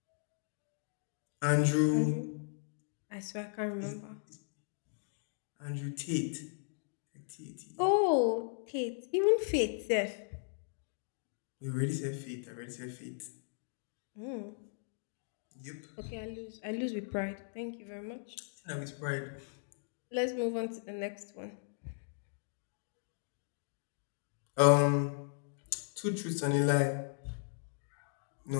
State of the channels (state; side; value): silent; right; digital silence